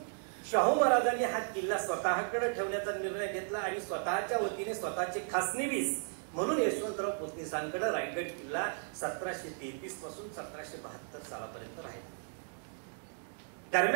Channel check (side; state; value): left; silent; 54 dB below the other